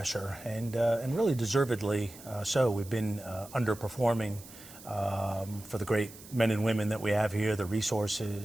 and really deservedly so. We've been underperforming for the great men and women that we have here, the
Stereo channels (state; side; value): noise; right; hiss, 18 dB below the sound